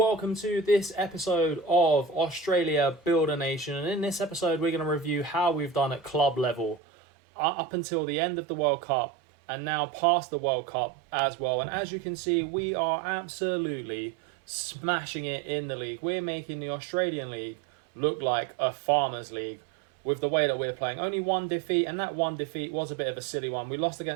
to this episode of Australia Build a Nation, and in this episode we're going to review how we've done at club level up until the end of the World Cup and now past the World Cup as well. And as you can see, we are absolutely smashing it in the league. We're making the Australian League look like a farmers league with the way that we're playing. Only one defeat, and that one defeat was a bit of a silly one. We lost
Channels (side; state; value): left; drops out; at 6.8 s